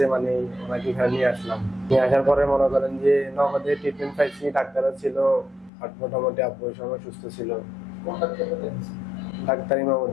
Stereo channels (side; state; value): right; drops out; at 5.7 s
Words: মানে ওনাকে এখানে নিয়ে আসলাম। নিয়ে আসার পরে মনে করেন যে নগদে ট্রিটমেন্ট পাইছি, ডাক্তারও ছিল আর মোটামুটি আব্বু ওই সময় সুস্থ ছিল। ডাক্তার